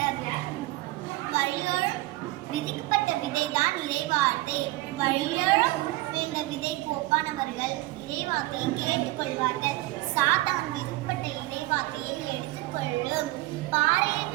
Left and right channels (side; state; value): left; quieter; 19.0 dB